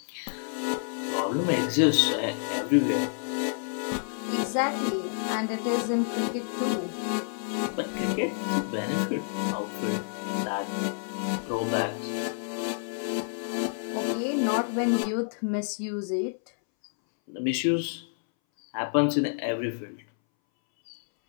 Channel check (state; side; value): silent; right; 59 dB below the other